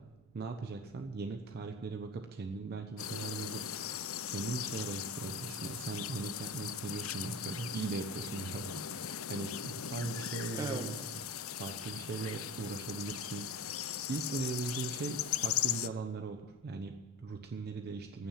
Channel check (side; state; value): right; noise; rumble, 27 dB below the sound